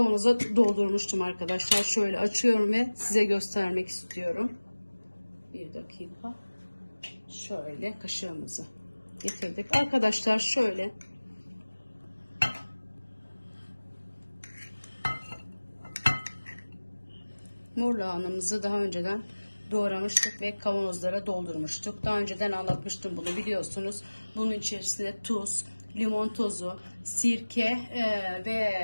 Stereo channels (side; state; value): both; inverted; correlation -1.00